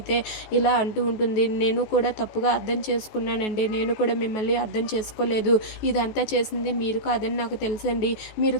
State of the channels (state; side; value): late; right; 14 ms